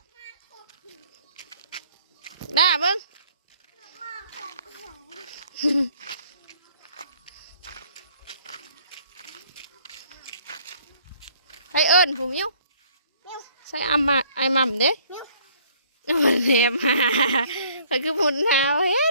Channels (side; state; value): both; inverted; correlation -0.60